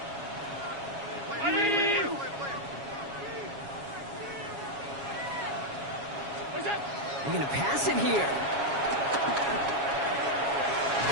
They're going to pass it here.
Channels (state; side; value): late; left; 7.2 ms